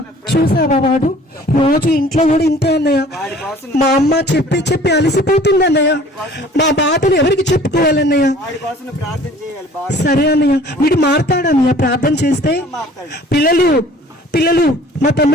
చూసావా వాడు రోజు ఇంట్లో కూడా ఇంతే అన్నయ్య. వాడి కోసం మా అమ్మ చెప్పి చెప్పి అలసిపోతుంది అన్నయ్య. మా బాధలు ఎవరికి చెప్పుకోవాలన్నయ్య? వాడి కోసం నువ్వు ప్రార్థన చేయాలి బాగా. సరే అన్నయ్య. వీడు మారుతాడన్నయ్య ప్రార్థన చేస్తే. మాట్లాడు. పిల్లలు పిల్లలు మా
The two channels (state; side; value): normal; both; correlation 0.50